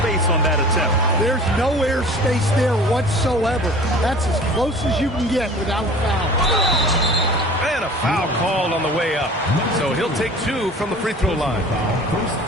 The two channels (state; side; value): normal; both; correlation 0.43